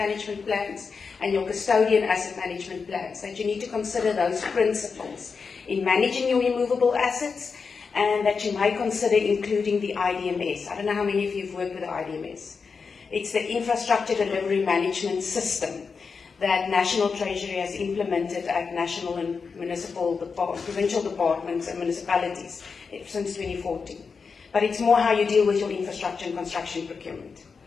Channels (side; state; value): right; quieter; 5.2 dB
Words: plans and your custodian asset management plans, that you need to consider those principles in managing your immovable assets, and that you may consider including the IDMS. I don't know how many of you have worked with the IDMS. It's the Infrastructure Delivery Management System that National Treasury has implemented at national and municipal, provincial departments and municipalities since 2014. But it's more how you deal with your infrastructure and construction procurement.